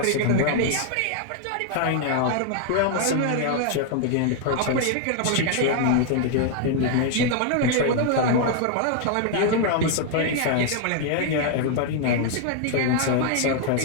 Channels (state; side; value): different; both; correlation 0.00